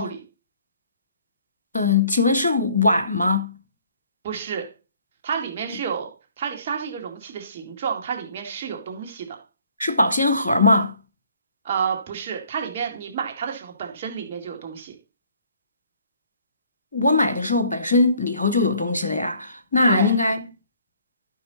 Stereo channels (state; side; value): inverted; both; correlation -0.59